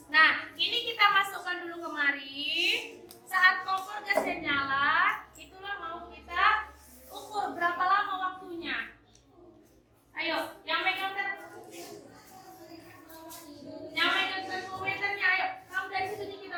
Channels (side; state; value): both; identical; correlation 1.00